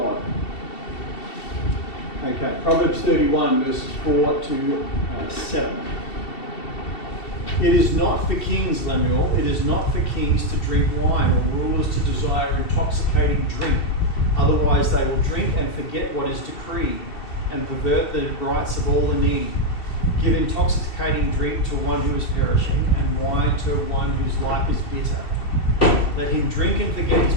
Okay, Proverbs 31, verses 4 to 7. It is not for kings, Lemuel, it is not for kings to drink wine, or rulers to desire intoxicating drink. Otherwise they will drink and forget what is decreed, and pervert the rights of all the needy. Give intoxicating drink to one who is perishing, and wine to one whose life is bitter. Let him drink and forget his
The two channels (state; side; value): late; right; 2.7 ms